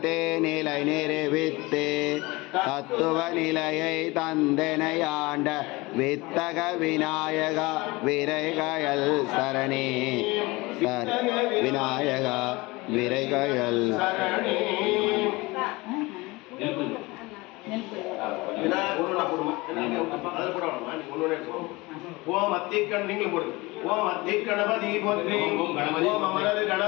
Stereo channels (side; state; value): right; quieter; 22.9 dB